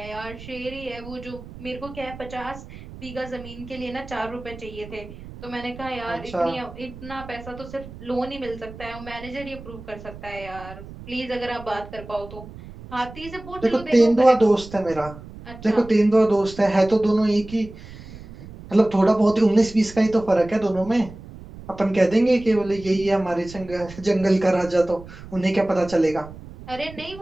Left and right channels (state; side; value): noise; right; rumble, 15 dB below the sound